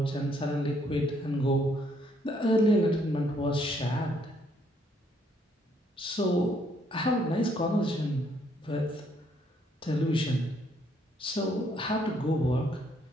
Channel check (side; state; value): both; normal; correlation 0.69